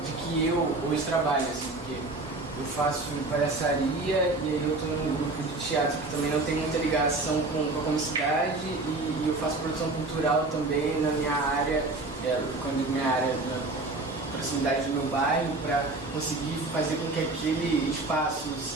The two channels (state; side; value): quieter; left; 3.1 dB